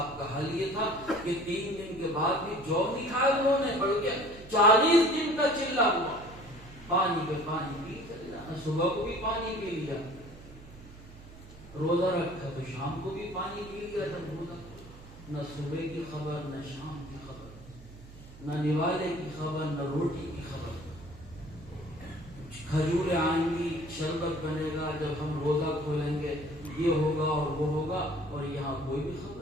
کا حال یہ تھا کہ 3 دن کے بعد بھی جو نہیں کھایا انہوں نے، بلکہ 40 دن کا چلا ہوا، پانی پہ پانی پی چلا، صبح کو بھی پانی پی لیا، روزہ رکھا تو شام کو بھی پانی پی لیا تھا روزہ، نہ صبح کی خبر، نہ شام کی خبر، نہ نوالے کی خبر، نہ روٹی کی خبر۔ کھجوریں آئیں گی، شربت بنے گا، جب ہم روزہ کھولیں گے یہ ہوگا اور وہ ہوگا، اور یہاں کوئی بھی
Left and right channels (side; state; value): right; noise; hum, 18 dB below the sound